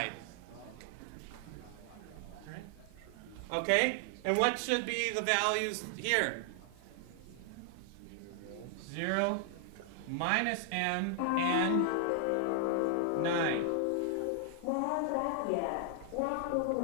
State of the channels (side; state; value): both; different; correlation 0.00